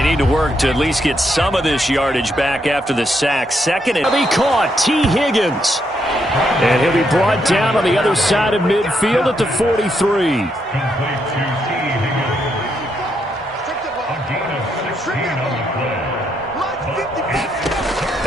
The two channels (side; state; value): both; normal; correlation 0.77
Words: need to work to at least get some of this yardage back after the sack. Second and be caught. T. Higgins. And he'll be brought down on the other side of midfield at the 43.